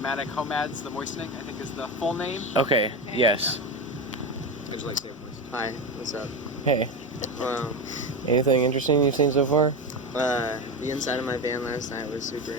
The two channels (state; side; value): normal; both; correlation 0.18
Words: Homads, the Moistening, I think is the full name. Okay, yes. I just like saying moist. Hi, what's up? Hey. Anything interesting you've seen so far? The inside of my van last night was super